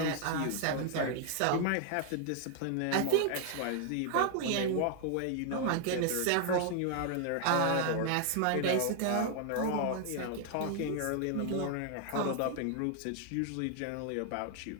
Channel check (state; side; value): different; both; correlation 0.00